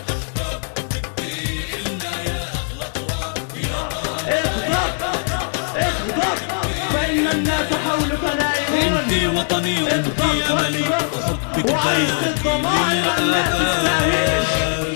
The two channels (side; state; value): right; silent; 64 dB below the other